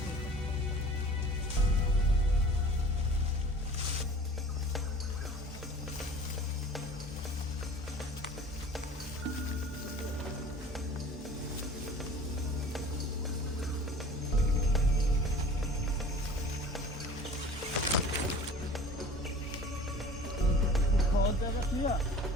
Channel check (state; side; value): normal; both; correlation 0.43